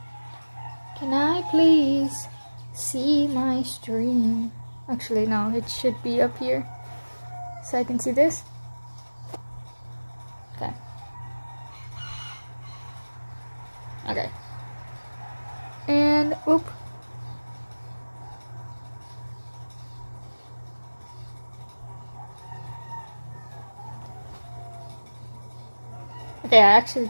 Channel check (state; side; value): inverted; both; correlation -1.00